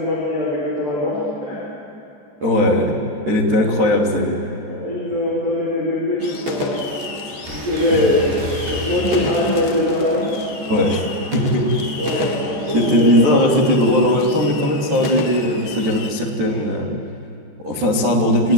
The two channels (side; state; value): left; late; 14 ms